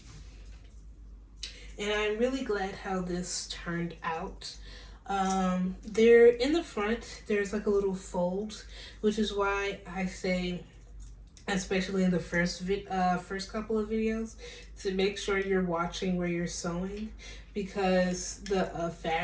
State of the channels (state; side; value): identical; both; correlation 1.00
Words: And I'm really glad how this turned out. There in the front, there's like a little fold, which is why I say, especially in the first couple of videos, to make sure you're watching where you're sewing, because the